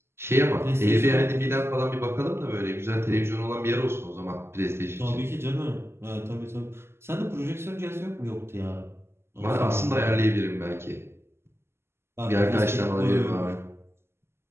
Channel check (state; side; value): late; left; 0.12 ms